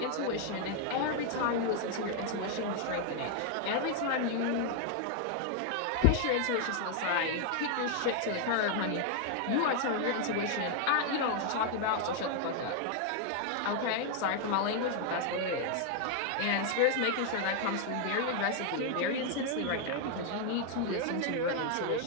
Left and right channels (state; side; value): different; both; correlation 0.00